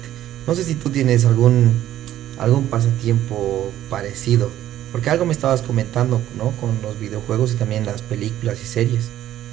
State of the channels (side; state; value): left; quieter; 12.6 dB